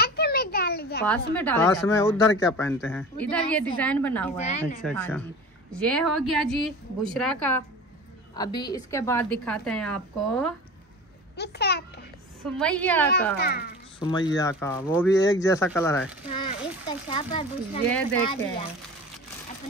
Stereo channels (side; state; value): both; normal; correlation 0.36